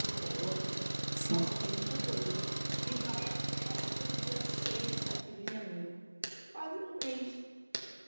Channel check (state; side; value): inverted; both; correlation -1.00